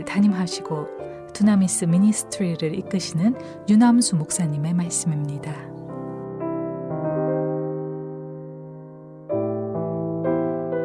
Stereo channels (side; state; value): both; identical; correlation 1.00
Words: 담임하시고 두나미스 미니스트리를 이끄시는 유남수 목사님의 말씀입니다.